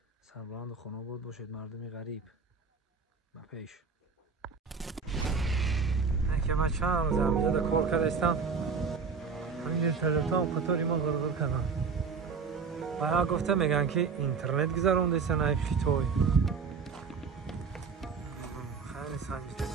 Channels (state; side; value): quieter; left; 5.3 dB